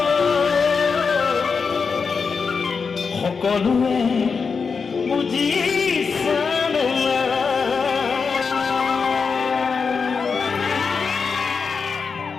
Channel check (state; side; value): quieter; right; 5.3 dB